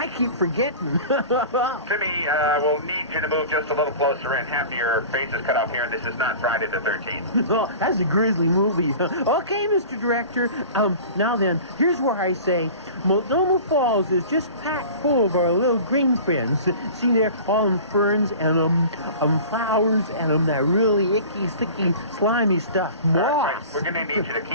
keep forgetting. Timmy, we'll need you to move just a little closer in. Half of your face is cut off here, and this is not Friday the 13th. Oh, that's a grisly movie. Okay, Mr. Director. Now then, here's where I say Multnomah Falls is just packed full of our little green friends. See there, all them ferns and flowers and that really icky, sticky, slimy stuff. Moss. Right. We're going to need you to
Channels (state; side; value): inverted; both; correlation -0.39